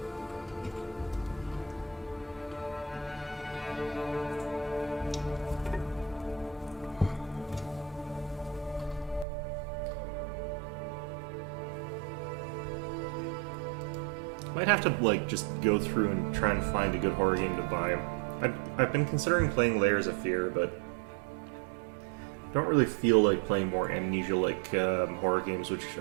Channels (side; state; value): left; drops out; at 9.2 s